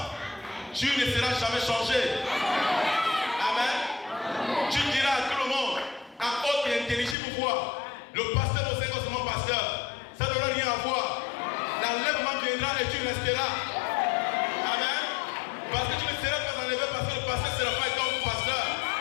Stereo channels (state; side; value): drops out; right; at 7.2 s